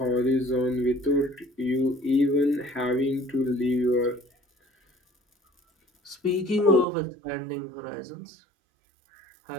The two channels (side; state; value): left; drops out; at 6.9 s